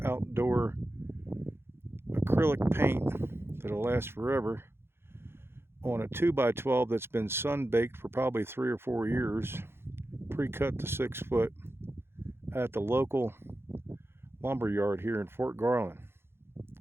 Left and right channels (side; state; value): left; late; 0.11 ms